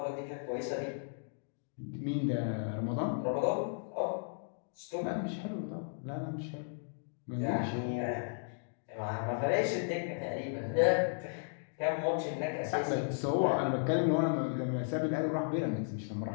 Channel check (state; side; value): silent; right; digital silence